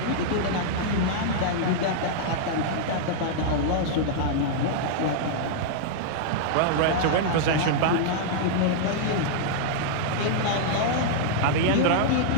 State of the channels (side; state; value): both; different; correlation -0.01